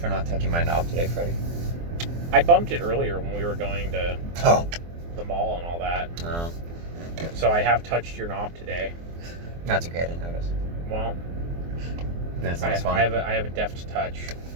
not touching my knob today, Freddie. I bumped it earlier when we were going to Oh. the mall and all that. No. So I have touched your knob today. That's okay. I didn't notice. Well, Then it's not as fun. I have a deft touch.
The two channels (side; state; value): left; late; 24 ms